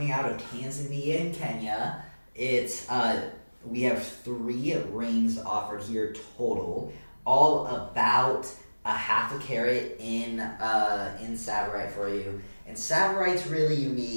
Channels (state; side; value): inverted; both; correlation -1.00